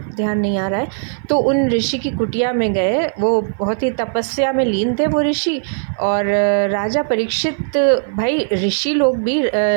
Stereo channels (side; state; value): left; silent; 55 dB below the other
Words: ध्यान नहीं आ रहा है। तो उन ऋषि की कुटिया में गए। वो बहुत ही तपस्या में लीन थे वो ऋषि। और राजा परीक्षित, भाई ऋषि लोग भी